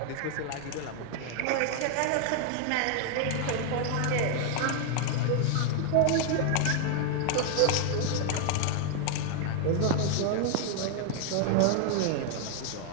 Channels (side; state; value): both; different; correlation 0.00